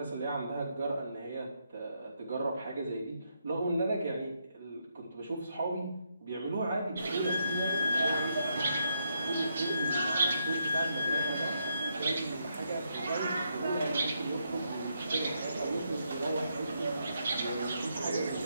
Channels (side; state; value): both; inverted; correlation -0.78